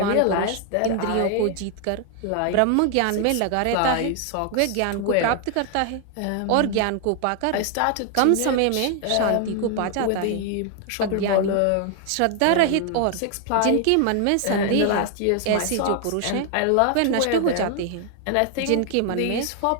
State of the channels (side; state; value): both; different; correlation 0.00